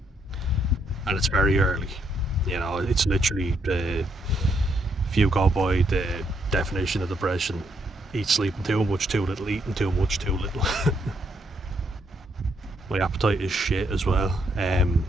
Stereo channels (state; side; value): normal; both; correlation 0.74